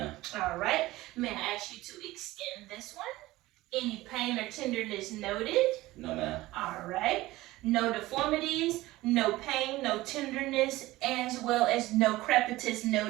All right. May I ask you to extend this one? Any pain or tenderness noted? No, ma'am. All right. No deformities, no pain, no tenderness, as well as no crepitus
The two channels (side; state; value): left; quieter; 18.1 dB